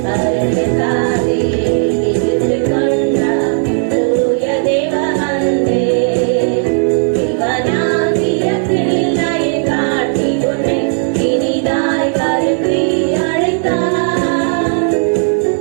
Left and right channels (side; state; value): left; silent; 61 dB below the other